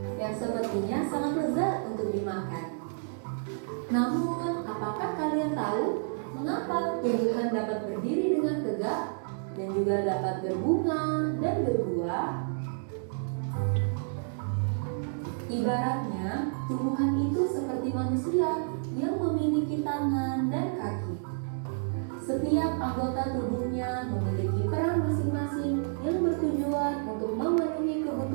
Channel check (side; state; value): left; silent; digital silence